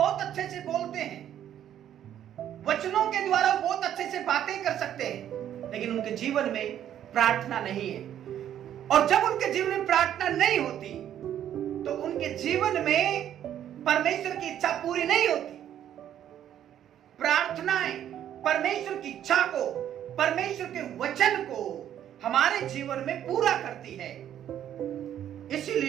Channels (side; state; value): left; quieter; 10.6 dB